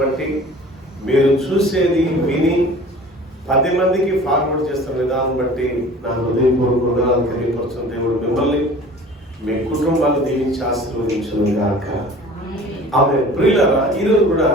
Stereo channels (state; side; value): normal; both; correlation 0.44